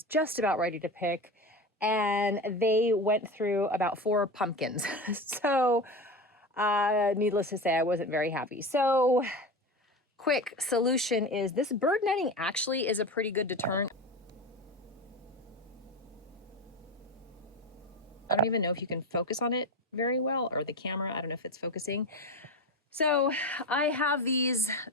just about ready to pick. And they went through about 4 pumpkins. So needless to say, I wasn't very happy. So quick solution is this bird netting actually is a pretty good deterrent. I don't even know if you can focus on it very well, or the camera, I don't know if it's focusing. So I have these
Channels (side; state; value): both; normal; correlation 0.24